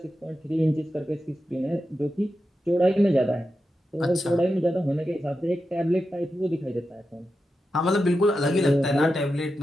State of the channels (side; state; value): both; normal; correlation 0.90